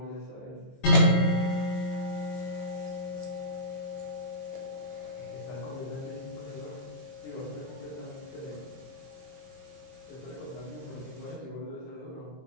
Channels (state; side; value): late; right; 22 ms